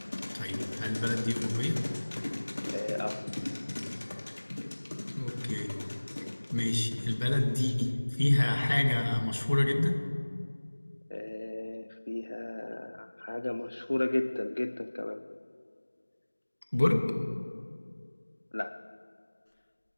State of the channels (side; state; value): both; inverted; correlation -1.00